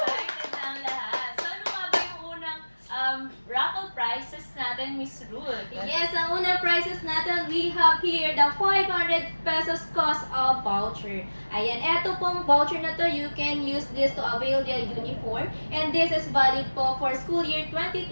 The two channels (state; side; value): inverted; both; correlation -1.00